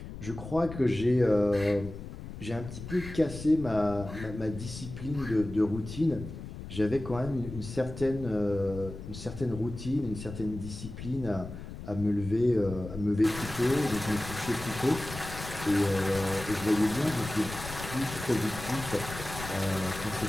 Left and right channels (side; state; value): left; noise; rumble, 10 dB below the sound